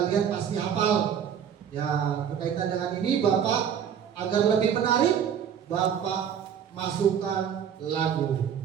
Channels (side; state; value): left; quieter; 8.5 dB